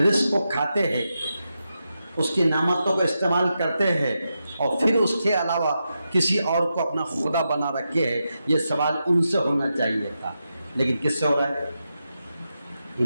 کو کھاتے ہیں، اس کی نعمتوں کو استعمال کرتے ہیں اور پھر اس کے علاوہ کسی اور کو اپنا خدا بنا رکھے ہیں. یہ سوال ان سے ہونا چاہیے تھا، لیکن کس سے ہو رہا ہے؟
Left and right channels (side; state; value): both; inverted; correlation -0.87